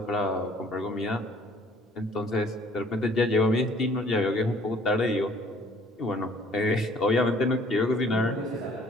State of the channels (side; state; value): both; normal; correlation 0.57